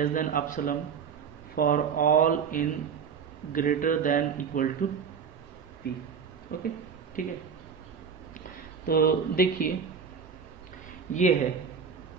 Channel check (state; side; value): quieter; left; 6.5 dB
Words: than epsilon for all in greater than equal to p। Okay, ठीक है, तो देखिए ये